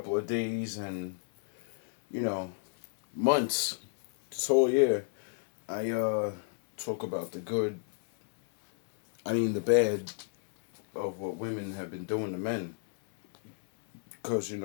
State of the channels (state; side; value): silent; right; 57 dB below the other